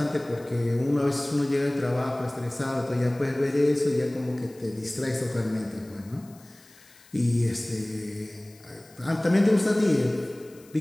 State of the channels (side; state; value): left; noise; hiss, 26 dB below the sound